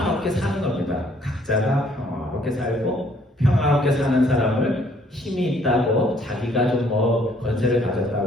사는 겁니다. 각자가 평화롭게 살고 평화롭게 사는 사람을 힘이 있다고 자기가 좀 뭐 권세를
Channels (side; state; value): both; normal; correlation 0.63